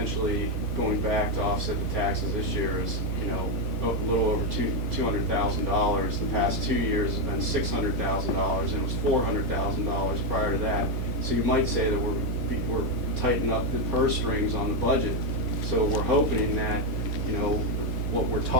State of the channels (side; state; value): both; normal; correlation 0.05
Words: going back to offset the taxes this year is, a little over $200,000. The past 2 years has been $600,000, and it was $400,000 prior to that. So you might say that we're tightening up the purse strings on the budget. So we're hoping that, what we're